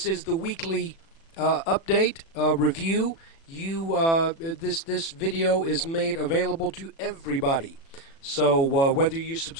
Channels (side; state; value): right; late; 36 ms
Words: is the weekly update review, this video is made available to everybody. So whether you